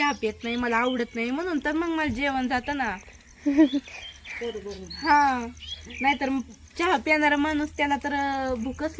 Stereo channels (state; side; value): identical; both; correlation 1.00